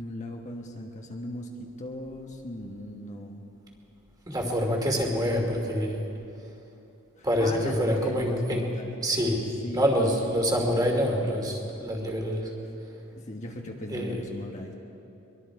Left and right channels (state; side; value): normal; both; correlation 0.57